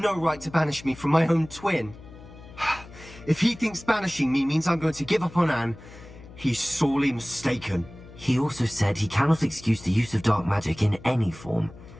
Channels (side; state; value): left; noise; hum, 19 dB below the sound